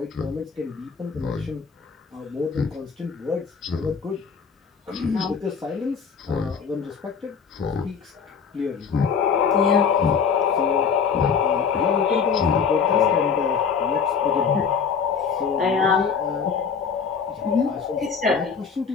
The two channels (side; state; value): right; quieter; 6.3 dB